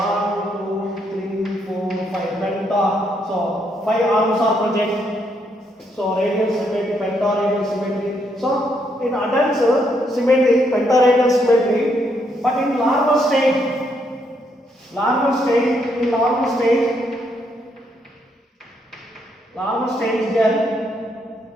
2, 3, 4, 5 penta. So 5 arms are present. So radial symmetry, pentaradial symmetry. So in adults symmetry, pentaradial symmetry, but in larval stage, there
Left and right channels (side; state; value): both; normal; correlation 0.75